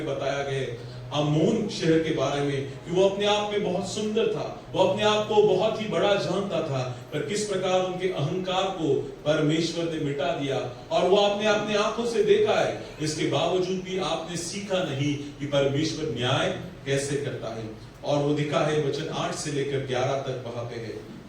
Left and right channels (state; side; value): identical; both; correlation 1.00